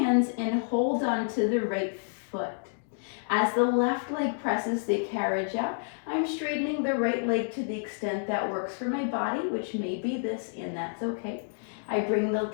and hold on to the right foot. As the left leg presses the carriage out, I'm straightening the right leg to the extent that works for my body, which may be this, and that's okay. I bring the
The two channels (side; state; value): right; silent; digital silence